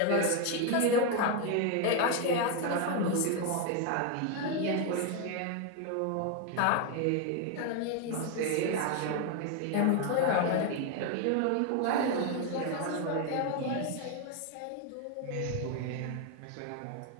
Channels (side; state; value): both; different; correlation 0.01